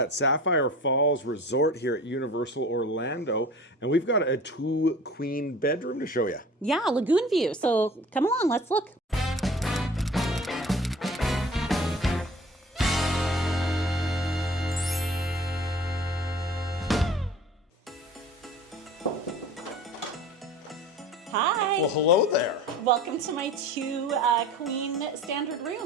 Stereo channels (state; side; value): normal; both; correlation 0.42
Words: Sapphire Falls Resort here at Universal Orlando, and we've got a 2-queen bedroom to show you. Yeah, lagoon view. So come along, let's look. Hi. Well, hello there. Welcome to my 2-queen standard